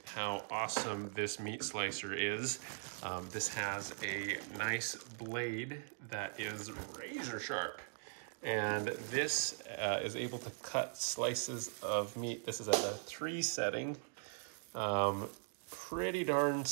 how awesome this meat slicer is. This has a nice blade that is razor sharp. And this is able to cut slices of meat. This is at a 3 setting, pretty darn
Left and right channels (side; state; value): left; silent; digital silence